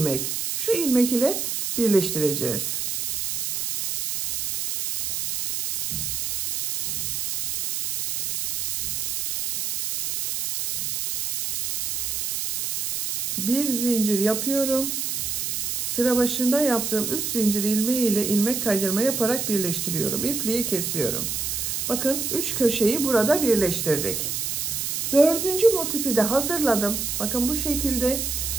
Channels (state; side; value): noise; right; hiss, 2 dB below the sound